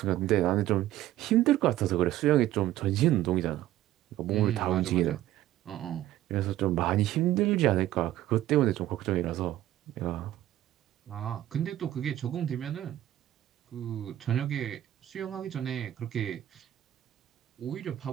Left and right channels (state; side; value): quieter; left; 13.7 dB